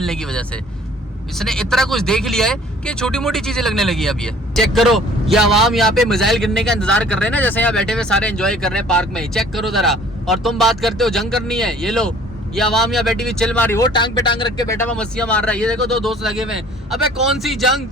की वजह से। इसने इतना कुछ देख लिया है कि छोटी मोटी चीजें लगने लगी अब। ये चेक करो, ये आवाम यहाँ पे मिसाइल गिरने का इंतजार कर रहे हैं ना, जैसे यहाँ बैठे हुए सारे एंजॉय कर रहे हैं पार्क में। चेक करो जरा, और तुम बात करते हो जंग करनी है। ये लो, ये आवाम यहाँ बैठी हुई चिल मारी, वो टांग पे टांग रख के बैठा हुआ मस्तियां मार रहा है। ये देखो दो दोस्त लगे हुए हैं। अबे कौन सी जंग,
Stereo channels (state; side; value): normal; both; correlation 0.52